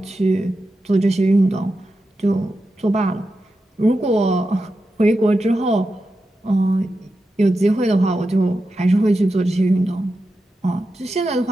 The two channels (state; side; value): normal; both; correlation 0.90